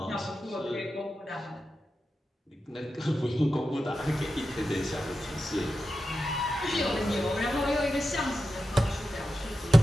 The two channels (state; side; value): normal; both; correlation 0.91